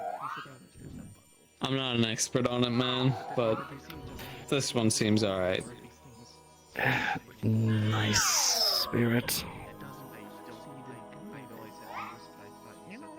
You should understand. I'm not an expert on it, man, but this one seems alright. Nice spirit. You know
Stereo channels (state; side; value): identical; both; correlation 1.00